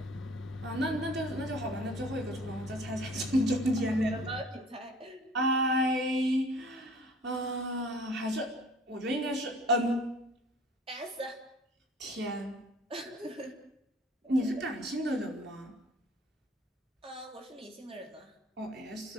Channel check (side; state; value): both; normal; correlation 0.51